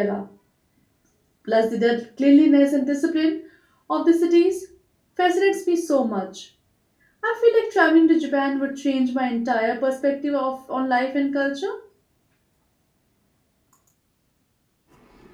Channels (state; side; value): identical; both; correlation 1.00